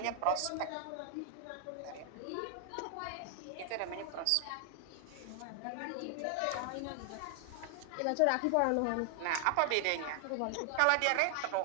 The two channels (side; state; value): both; different; correlation 0.00